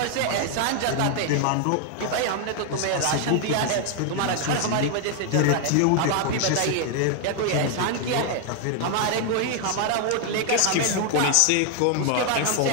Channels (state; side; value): different; both; correlation 0.00